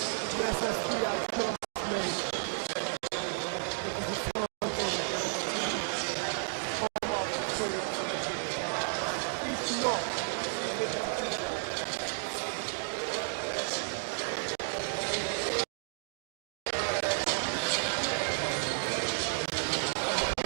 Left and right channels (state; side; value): silent; left; digital silence